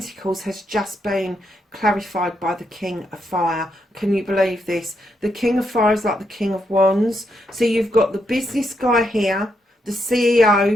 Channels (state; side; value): normal; both; correlation 0.80